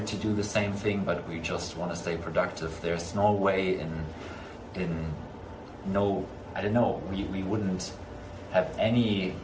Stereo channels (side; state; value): both; identical; correlation 1.00